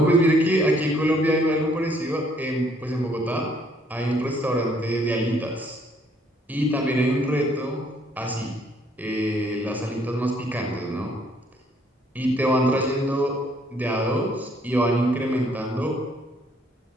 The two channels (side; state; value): both; normal; correlation 0.65